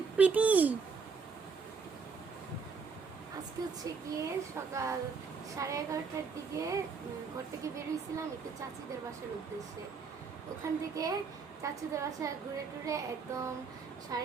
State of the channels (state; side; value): quieter; left; 5.2 dB